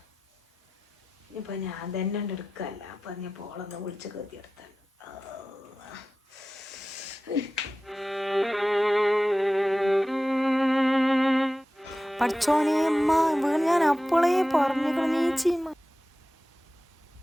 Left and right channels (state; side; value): normal; both; correlation 0.95